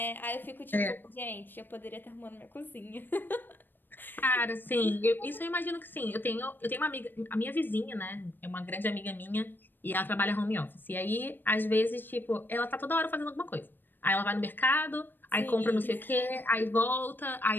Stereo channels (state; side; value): late; right; 0.094 ms